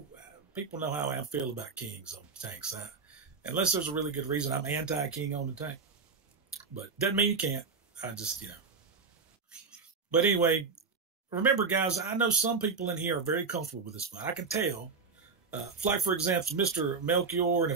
people know how I feel about kings on tanks. Unless there's a really good reason, I'm anti-king on the tank. But doesn't mean you can't. I just, But anyway, remember, guys, I know some people in here are very comfortable with this fight. I can tell. Like, for example, Mr. Melchior and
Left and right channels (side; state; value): left; quieter; 4.9 dB